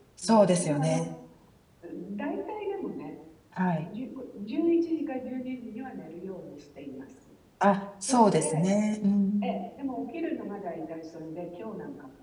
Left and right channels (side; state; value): both; identical; correlation 1.00